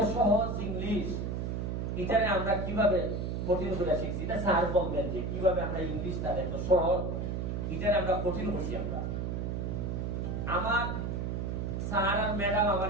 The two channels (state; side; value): noise; right; hum, 2 dB below the sound